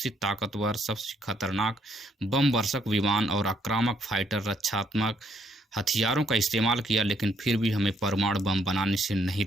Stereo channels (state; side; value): normal; both; correlation 0.71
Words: ताकतवर, सबसे खतरनाक बमवर्षक विमान और आक्रामक फाइटर रक्षात्मक हथियारों का इस्तेमाल किया, लेकिन फिर भी हमें परमाणु बम बनाने से नहीं